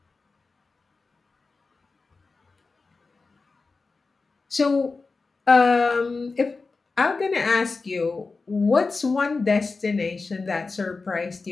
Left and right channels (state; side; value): quieter; right; 4.1 dB